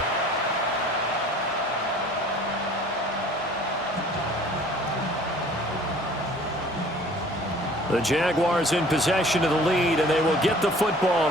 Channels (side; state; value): both; normal; correlation 0.50